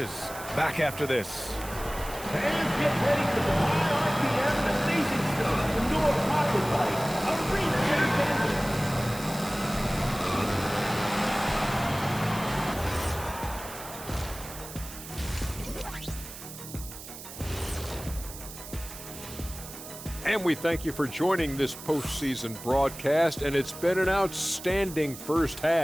Back after this. Fans get ready for the high RPM and amazing stuff. The Nora Pocket Bike, a reset engine. And we thank you for joining this postseason broadcast, and it's been an outstanding first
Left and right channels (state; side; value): noise; right; hiss, 13 dB below the sound